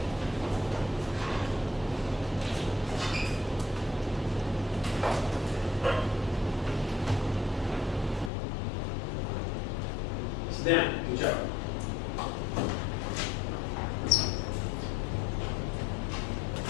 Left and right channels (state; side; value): drops out; right; at 8.3 s